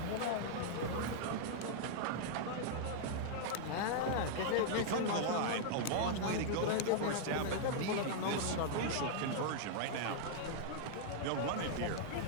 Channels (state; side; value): different; both; correlation -0.01